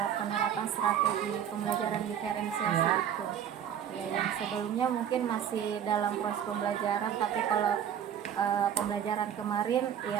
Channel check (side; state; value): left; quieter; 9.2 dB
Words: penerapan strategi pembelajaran diferensiasi Ya. itu. Ya, yang sebelumnya mungkin masih dalam proses pembelajaran, tapi kalau pembelajaran kemarin